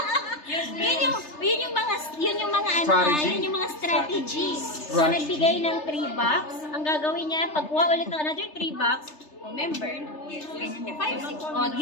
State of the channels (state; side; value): late; right; 3.3 ms